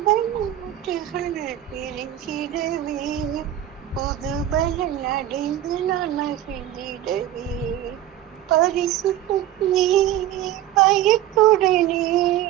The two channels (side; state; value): left; quieter; 12.4 dB